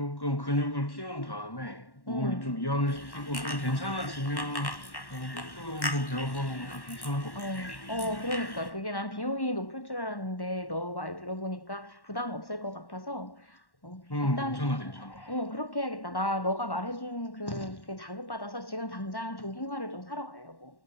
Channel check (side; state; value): right; late; 1.1 ms